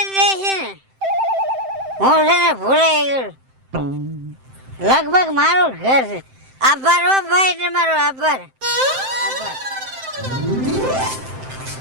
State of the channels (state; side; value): late; left; 7.7 ms